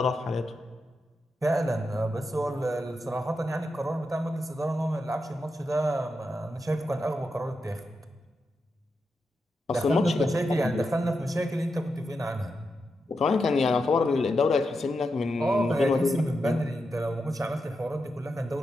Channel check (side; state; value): both; normal; correlation 0.87